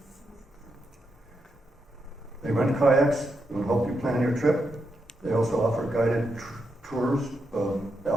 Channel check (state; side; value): normal; both; correlation 0.83